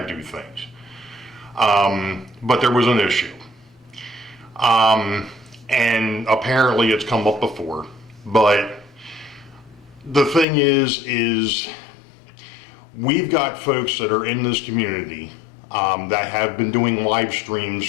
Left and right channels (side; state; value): right; drops out; at 10.5 s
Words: do things. But there was an issue. And apparently it's come up before. But the thing is we've got folks that are in this community that have been doing live streams